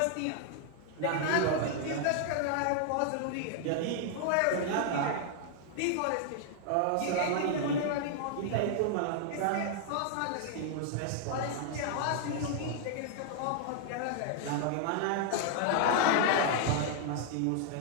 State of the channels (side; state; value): both; different; correlation -0.01